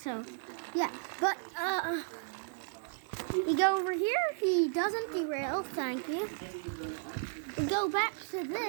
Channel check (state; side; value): silent; left; digital silence